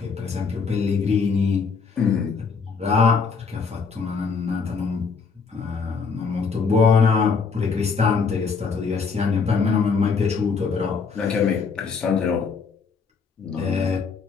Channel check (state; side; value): quieter; right; 5.3 dB